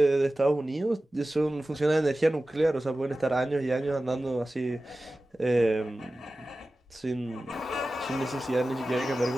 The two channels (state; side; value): normal; both; correlation 0.95